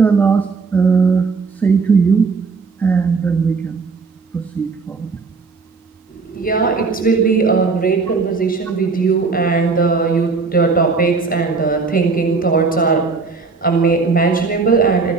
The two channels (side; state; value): left; quieter; 4.6 dB